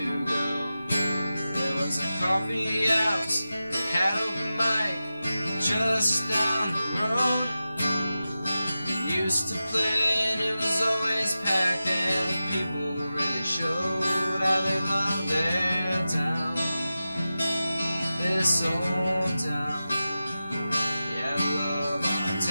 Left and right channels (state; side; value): inverted; both; correlation -0.94